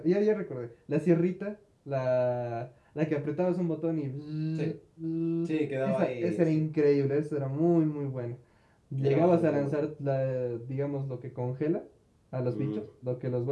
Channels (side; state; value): both; identical; correlation 1.00